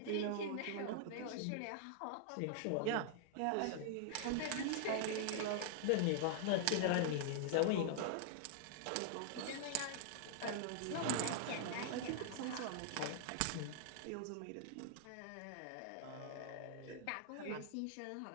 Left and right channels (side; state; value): both; different; correlation -0.01